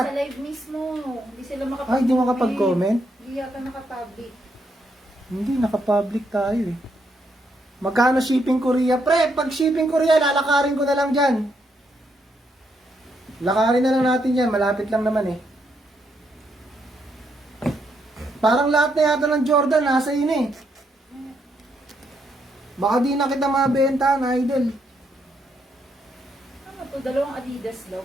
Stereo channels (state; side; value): normal; both; correlation 0.77